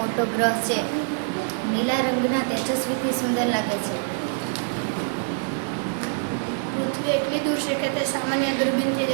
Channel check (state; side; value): silent; left; digital silence